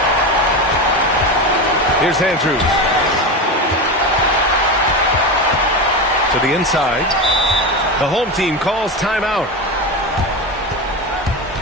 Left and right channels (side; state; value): both; normal; correlation 0.20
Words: Here's Andrews. To the inside. The home team calls timeout.